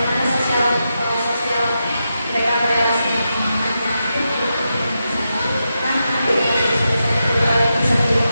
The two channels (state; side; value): inverted; both; correlation -0.87